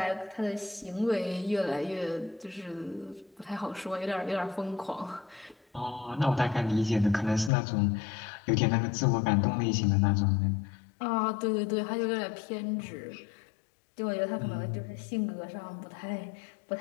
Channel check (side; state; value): right; drops out; at 7.5 s